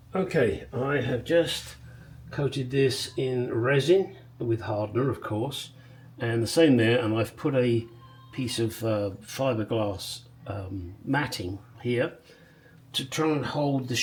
Okay, I have just coated this in resin with hardener, of course, and the same there, and I've put a piece of fiberglass matting here to try and hold the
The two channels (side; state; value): both; identical; correlation 1.00